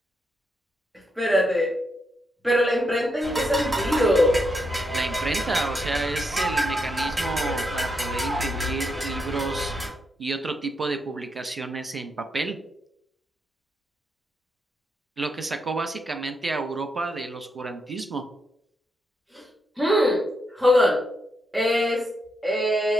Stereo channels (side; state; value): both; normal; correlation 0.81